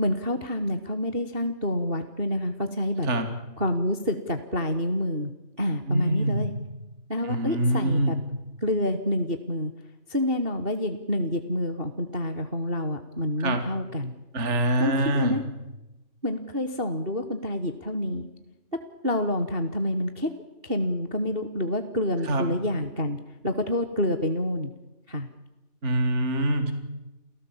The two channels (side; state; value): left; late; 2.7 ms